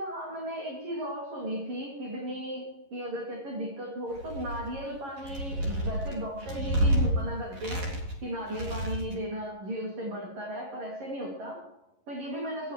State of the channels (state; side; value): late; left; 11 ms